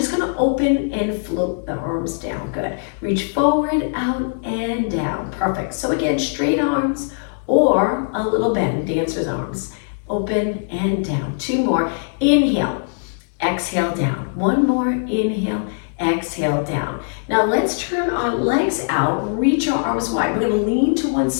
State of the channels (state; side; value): silent; right; digital silence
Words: going to open and float the arms down. Good. Reach forward, out, and down. Perfect. So again, straight arms or a little bend, dancer's arms. Open and down. Two more. Inhale, exhale, down. One more. Inhale, exhale, down. Now let's turn our legs out. Reach our arms wide. We're going to lean to one